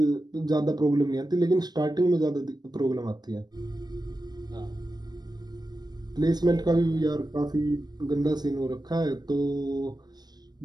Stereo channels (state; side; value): late; left; 0.20 ms